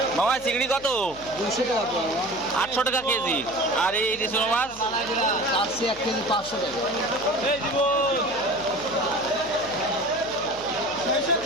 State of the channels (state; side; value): noise; left; hum, 20 dB below the sound